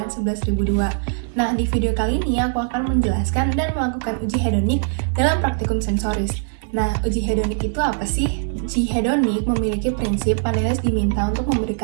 Nah, di video kali ini aku akan menjelaskan dan melakukan uji hedonik dalam praktikum sensoris. Nah, uji hedonik itu apa sih? Uji hedonik memiliki prinsip panelis diminta untuk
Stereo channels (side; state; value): left; silent; digital silence